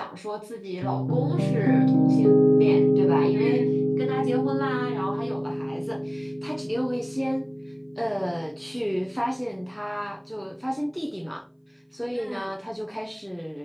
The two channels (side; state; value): both; identical; correlation 1.00